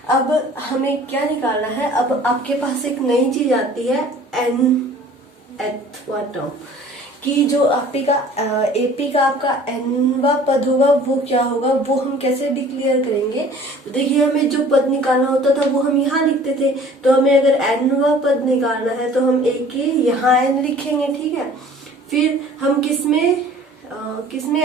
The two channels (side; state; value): both; normal; correlation 0.49